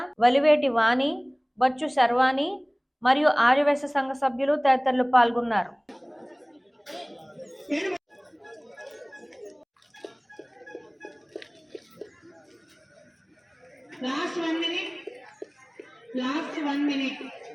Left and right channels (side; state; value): both; identical; correlation 1.00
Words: వలివేటి వాణి, బచ్చు శర్వాణి మరియు ఆర్యవైశ్య సంఘ సభ్యులు తదితరులు పాల్గొన్నారు. Last one minute.